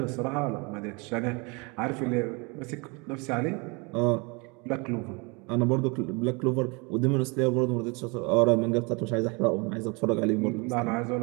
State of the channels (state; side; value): quieter; left; 29.6 dB